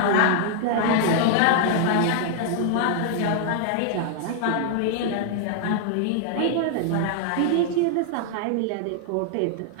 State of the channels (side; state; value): both; different; correlation 0.00